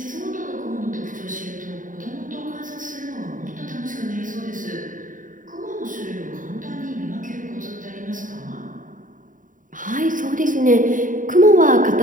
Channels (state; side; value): late; left; 0.38 ms